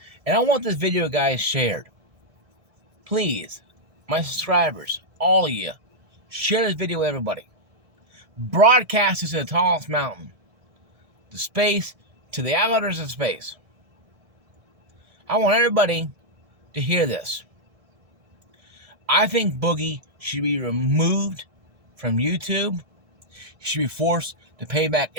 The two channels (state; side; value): late; left; 1.7 ms